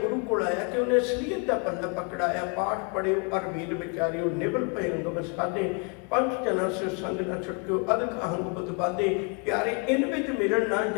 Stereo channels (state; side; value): quieter; right; 34.7 dB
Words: गुरु को आया कि उन्हें असलीयत का पल्ला पकड़ाया। पाठ पढ़ियो और वीर विचारियो, निबल पे अंग साधे, पंच जना से संग न छुटक्यो, अदक अहंग बुध बाधे। प्यारे इन विच मिलन ना